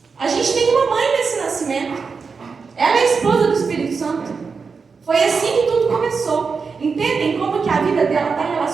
a gente tem uma mãe nesse nascimento. Ela é a esposa do Espírito Santo. Foi assim que tudo começou. Entendem como que a vida dela está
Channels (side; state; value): left; quieter; 5.1 dB